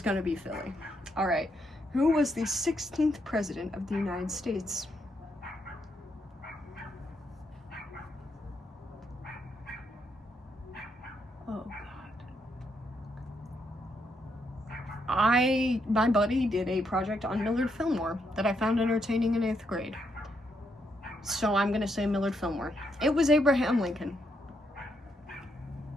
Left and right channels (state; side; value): normal; both; correlation 0.77